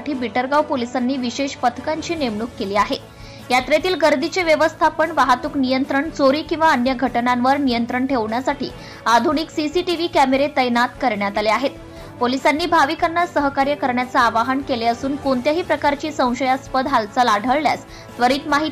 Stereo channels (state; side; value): identical; both; correlation 1.00